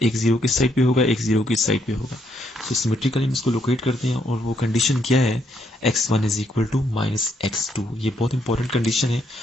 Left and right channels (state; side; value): normal; both; correlation 0.74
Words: एक 0 किस साइड पे होगा, एक 0 किस साइड पे होगा। तो सिमेट्रिकली हम इसको लोकेट करते हैं, और वो कंडीशन क्या है, x1 is equal to minus x2। ये बहुत इंपॉर्टेंट कंडीशन है,